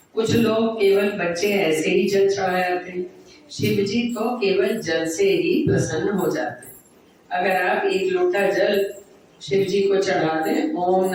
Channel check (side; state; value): both; identical; correlation 1.00